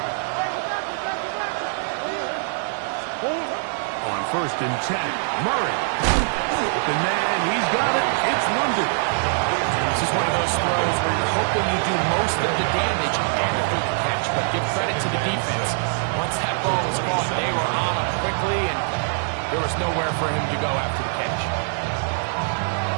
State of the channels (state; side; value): silent; left; 63 dB below the other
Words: On 1st and 10, Murray. The man, he's got it. It's London. This is one of those throws where you're hoping you do most of the damage after the catch, but give credit to the defense. Once that ball was caught, they were on him quickly, and there was nowhere for him to go after the catch.